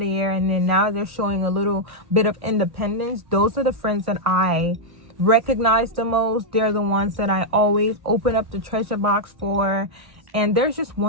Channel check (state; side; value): late; left; 1.6 ms